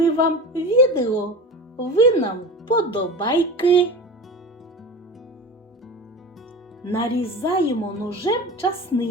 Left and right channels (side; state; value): both; normal; correlation 0.30